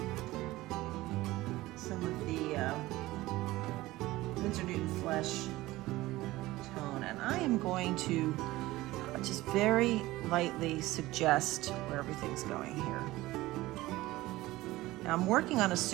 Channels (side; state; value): left; quieter; 18.0 dB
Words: some of the Winsor Newton flesh tone, and I am going to just very lightly suggest where everything's going here. Now I'm working on a